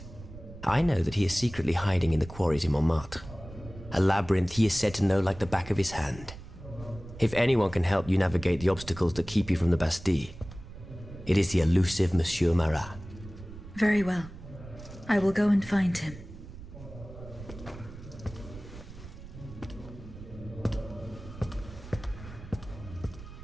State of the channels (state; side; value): noise; right; rumble, 15 dB below the sound